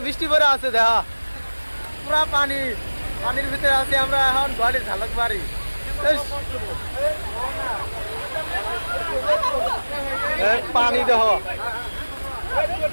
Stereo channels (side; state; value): both; inverted; correlation -1.00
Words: বৃষ্টি পরে আছে, দেখা পুরা পানির ভিতরে আছি আমরা এখন, গাড়ি ঝালকবাড়ি। পানি দেহ